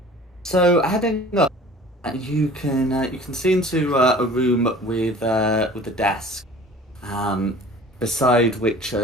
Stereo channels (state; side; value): normal; both; correlation 0.45